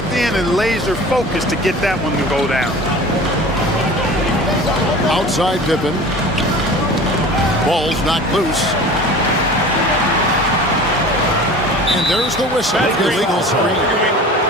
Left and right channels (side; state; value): both; normal; correlation 0.39